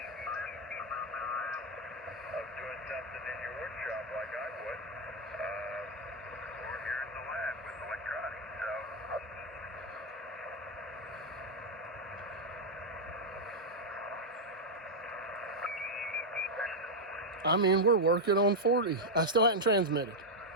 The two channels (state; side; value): normal; both; correlation 0.00